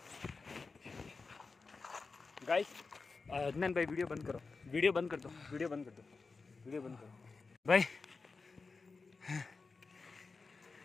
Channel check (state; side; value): quieter; right; 4.3 dB